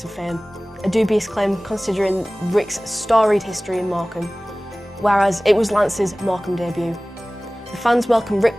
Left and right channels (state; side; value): normal; both; correlation 0.98